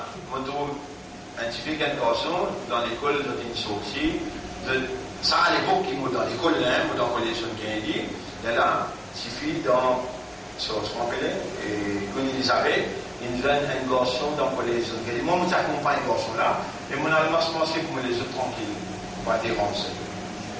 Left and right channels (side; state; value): both; identical; correlation 1.00